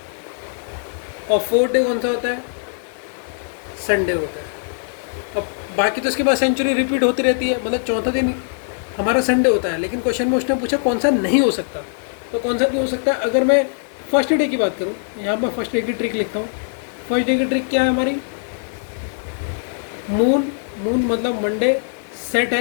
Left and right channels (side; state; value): right; silent; digital silence